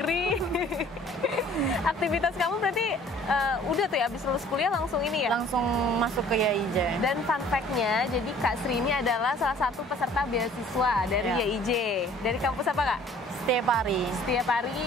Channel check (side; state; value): both; normal; correlation 0.53